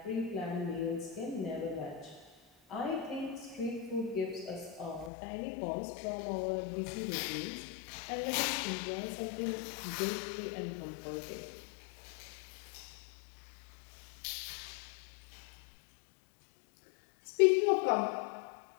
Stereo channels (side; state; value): right; drops out; at 5.1 s